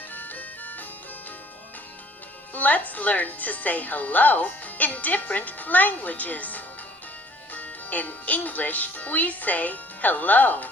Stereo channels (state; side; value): normal; both; correlation 0.57